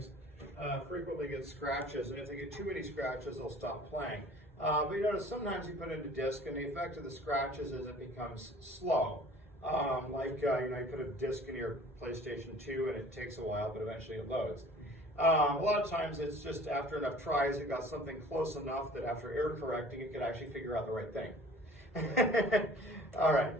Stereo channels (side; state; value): both; normal; correlation 0.48